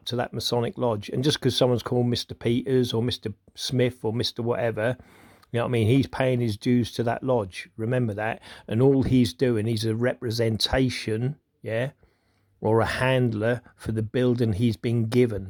to that Masonic lodge. And just because someone's called Mr. Peters or Mr. Smith or Mr. whatever, you know what I mean? He's paying his dues to that lodge. Remember that. And all he's doing, he's a representation, yeah, or a handler for the building he's been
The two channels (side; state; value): both; identical; correlation 1.00